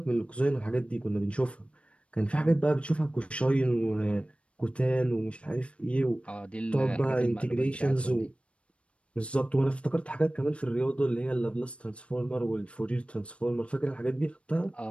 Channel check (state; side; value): late; right; 0.061 ms